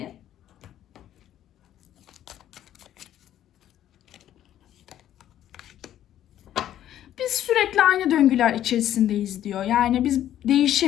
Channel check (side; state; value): right; quieter; 11.7 dB